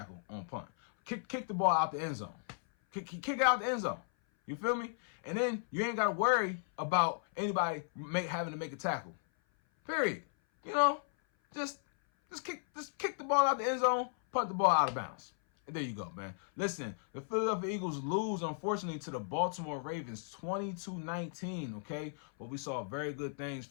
on punt. Kick the ball out the end zone. Kick it out the end zone. You feel me? And then you ain't got to worry about anybody having to make a tackle. Period. You know, just kick the ball out the end zone, punt the ball out of bounds. And there you go, man. Listen, the Philadelphia Eagles lose, unfortunately, to the Baltimore Ravens 20-19, okay? But we saw very good things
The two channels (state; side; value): silent; right; 54 dB below the other